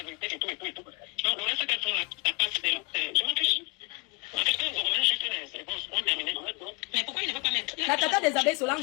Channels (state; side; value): quieter; right; 28.9 dB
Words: vérité et tout. Donc, le reste qu'elles font là, t'as pas je m'en fiche. En fait, quand vous revenez juste les réponses, on termine. Mais pourquoi il ne veut pas mettre? La tata des abeilles